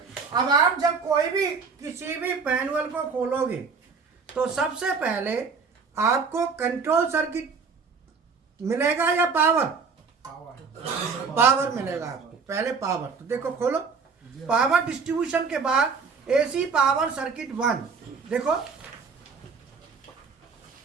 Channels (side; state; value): left; quieter; 5.2 dB